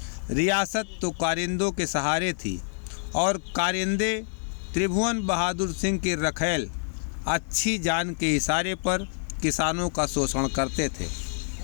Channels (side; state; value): right; silent; digital silence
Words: रियासत तो कारिंदों के सहारे थी और कारिंदे त्रिभुवन बहादुर सिंह की रखैल अच्छी जान के इशारे पर किसानों का शोषण करते थे।